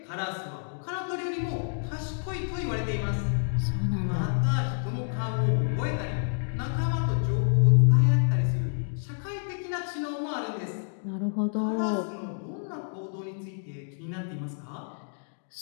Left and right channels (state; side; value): silent; right; digital silence